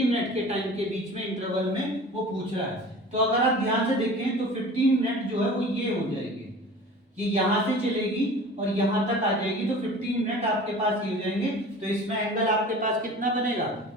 मिनट के टाइम के बीच में इंटरवल में वो पूछ रहा है। तो अगर आप ध्यान से देखें तो 15 मिनट जो है वो ये हो जाएगी, ये यहाँ से चलेगी और यहाँ तक आ जाएगी, तो 15 मिनट आपके पास ये हो जाएंगे। तो इसमें एंगल आपके पास कितना बनेगा?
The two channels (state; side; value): normal; both; correlation 0.41